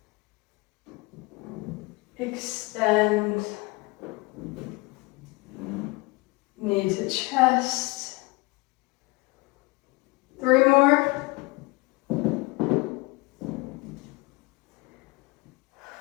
Extend. Knee to chest. 3 more.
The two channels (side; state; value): right; quieter; 24.9 dB